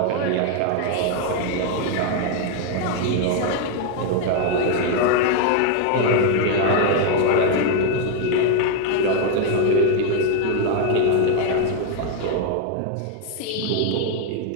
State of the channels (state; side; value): different; both; correlation 0.01